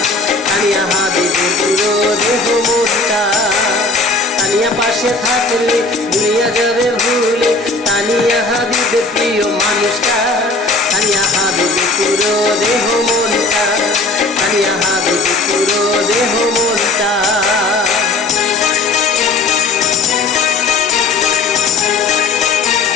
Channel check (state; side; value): quieter; right; 3.5 dB